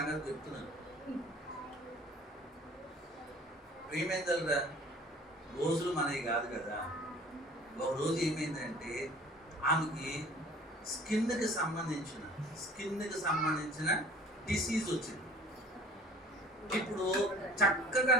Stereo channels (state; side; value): normal; both; correlation 0.49